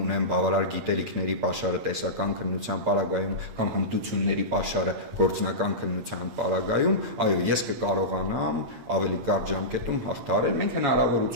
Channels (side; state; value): left; late; 8.7 ms